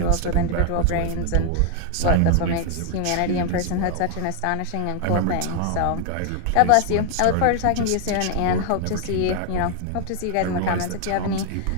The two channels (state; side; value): different; both; correlation 0.00